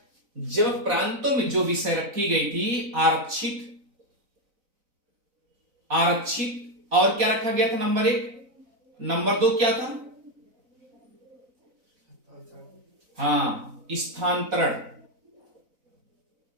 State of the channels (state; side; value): late; left; 4.0 ms